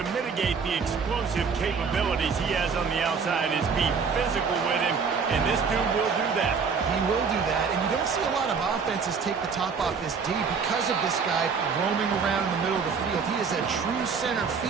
mitigate the explosive capabilities he has on the outside is be physical with him, and this dude will do that. He will do that, and you don't see a lot of offenses take the top off this D because of this guy roaming around in the middle of the field. He is a true center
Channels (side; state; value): left; quieter; 5.6 dB